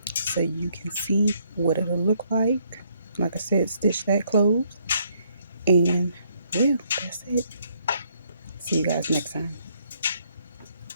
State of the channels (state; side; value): inverted; both; correlation -0.70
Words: so you can see what it'll look like. Like I said, stitch that closed. And yeah, that's it. See you guys next time.